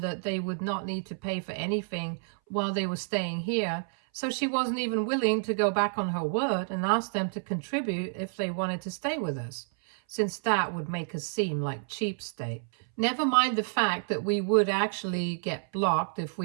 that they would not need to pay for anything while they were staying here. So she wasn't even willing to go back on her word and ask them to contribute if they wanted to stay with us, since that would make us seem like cheapskate. Never mind the fact that we would actually get blocked if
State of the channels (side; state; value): left; silent; 58 dB below the other